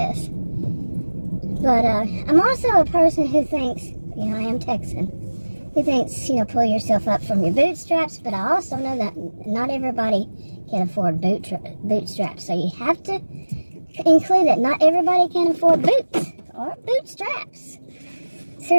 But I'm also a person who thinks, I am Texan, who thinks, pull yourself up from your bootstraps, but I also know that not everybody can afford bootstraps. So you have to include that not everybody can afford boots or bootstraps.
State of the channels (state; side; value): inverted; both; correlation -1.00